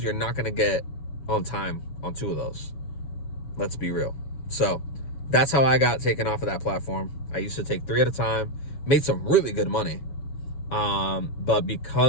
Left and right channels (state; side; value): late; right; 7.1 ms